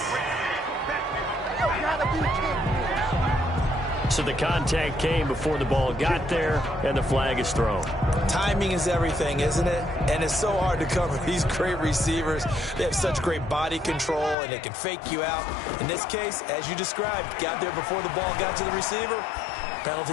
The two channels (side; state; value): right; drops out; at 14.4 s